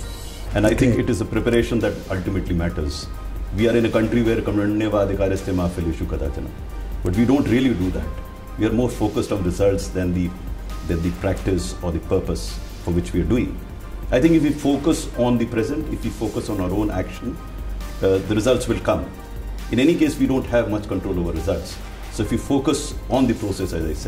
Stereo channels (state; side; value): identical; both; correlation 1.00